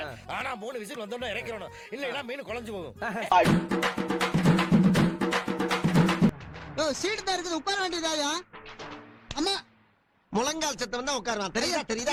ஆனா 3 விசில் வந்தோம்னா இறக்கிறணும், இல்லைன்னா மீன் குழஞ்சு போகும். சீட்டு தான் இருக்குது, உட்கார வேண்டியதாயா? அம்மா முழங்கால் சத்தம் தான் உட்காருவான். தெரியுதா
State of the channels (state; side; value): identical; both; correlation 1.00